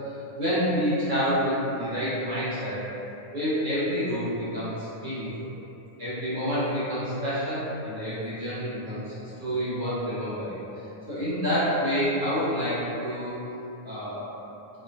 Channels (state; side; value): late; left; 9.7 ms